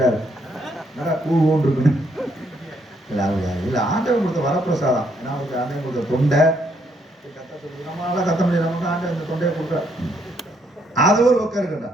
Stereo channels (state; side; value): normal; both; correlation 0.72